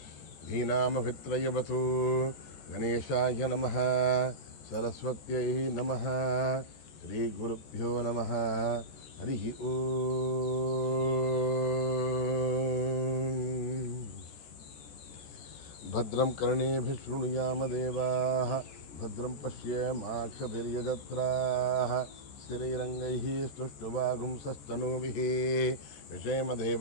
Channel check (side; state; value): right; late; 14 ms